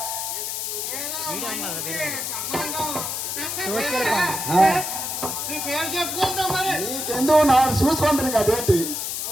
నీకెందుకు నా చూసుకుంటాను కదేంటి?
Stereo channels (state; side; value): noise; left; hiss, 3 dB below the sound